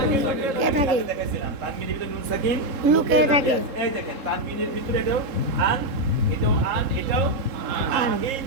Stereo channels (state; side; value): late; left; 3.7 ms